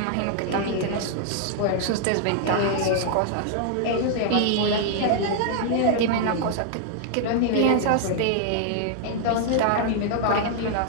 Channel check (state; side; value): different; both; correlation 0.00